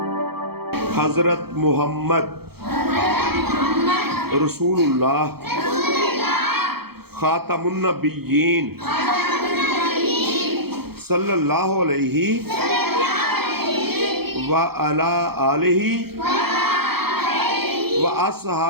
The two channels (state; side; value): late; left; 0.96 ms